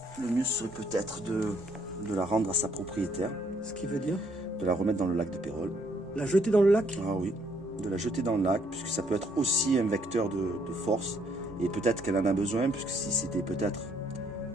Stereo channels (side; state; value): both; normal; correlation 0.68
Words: le mieux serait peut-être de la rendre à sa propriétaire. Ce qui veut dire? De la remettre dans le lac de Pérol. La jeter dans le lac? Ah oui. de la jeter dans le lac, puisque ça peut être aussi un vecteur de force. Et peut-être qu'elle en a besoin, puisque si c'était peut-être